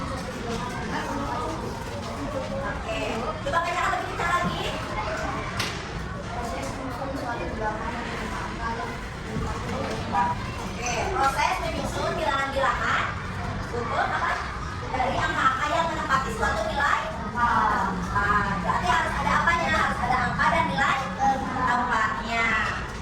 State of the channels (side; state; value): both; identical; correlation 1.00